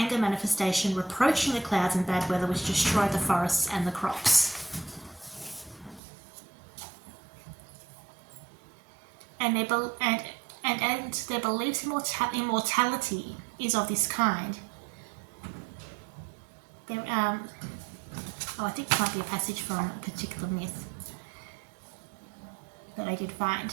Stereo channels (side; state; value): left; drops out; at 6.0 s